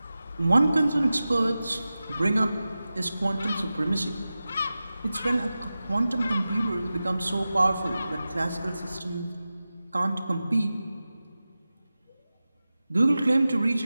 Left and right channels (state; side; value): inverted; both; correlation -0.95